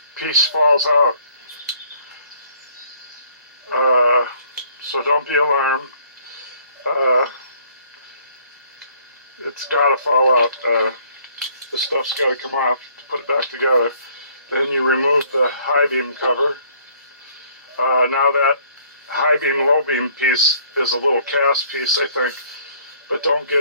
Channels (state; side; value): inverted; both; correlation -0.60